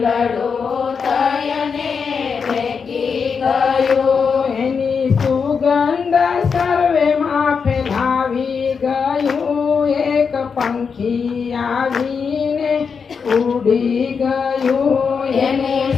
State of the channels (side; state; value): right; quieter; 5.9 dB